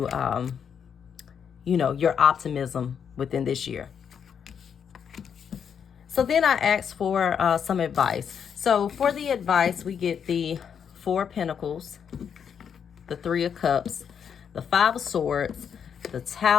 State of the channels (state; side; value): quieter; right; 7.5 dB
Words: your optimism within this year. So then I asked for some advice. So for the advice, we get the Four of Pentacles, the Three of Cups, the Five of Swords, the